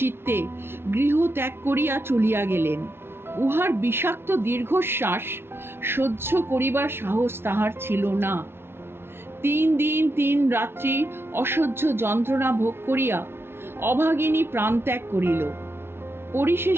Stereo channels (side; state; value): left; late; 0.12 ms